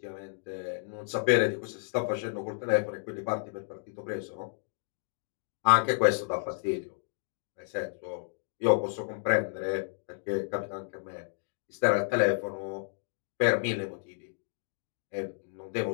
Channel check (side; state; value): right; silent; digital silence